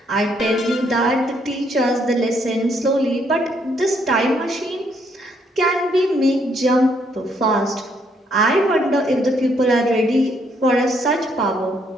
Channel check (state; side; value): normal; both; correlation 0.71